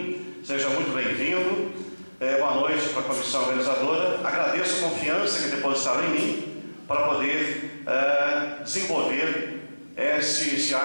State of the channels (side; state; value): both; inverted; correlation -1.00